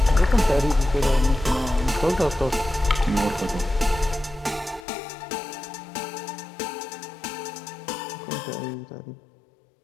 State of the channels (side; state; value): right; drops out; at 4.9 s